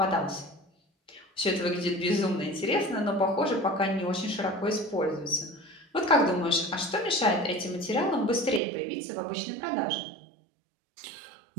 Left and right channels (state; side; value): drops out; left; at 8.6 s